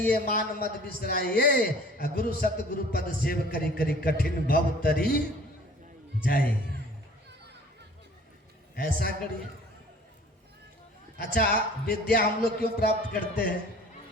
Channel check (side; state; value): both; normal; correlation 0.50